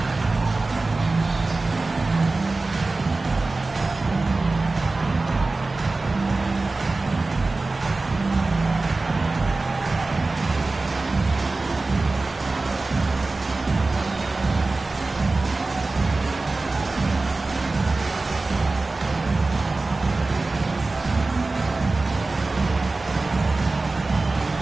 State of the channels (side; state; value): left; quieter; 3.4 dB